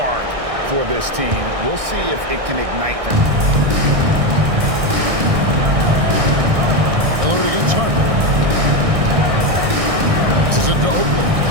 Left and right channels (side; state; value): left; late; 1.6 ms